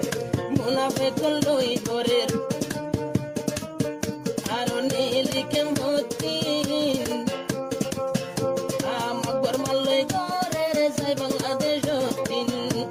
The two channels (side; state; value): both; identical; correlation 1.00